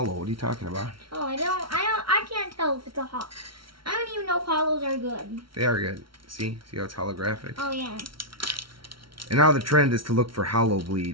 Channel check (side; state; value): left; late; 0.74 ms